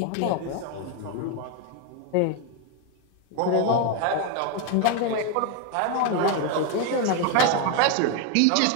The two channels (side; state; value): both; different; correlation 0.02